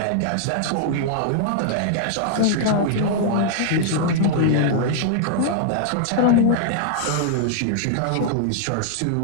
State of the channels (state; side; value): different; both; correlation -0.01